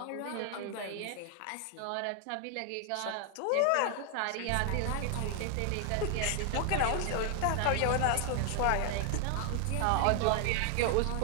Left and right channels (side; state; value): both; different; correlation 0.00